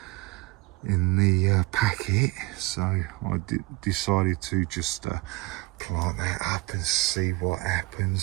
packet, so I decided to just plant that up and see what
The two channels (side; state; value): left; quieter; 21.2 dB